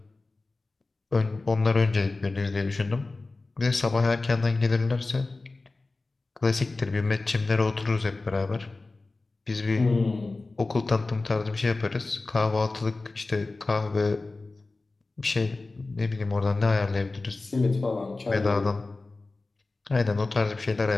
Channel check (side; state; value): right; quieter; 3.4 dB